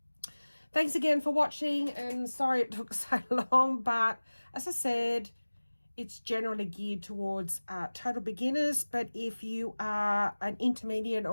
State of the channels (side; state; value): both; inverted; correlation -1.00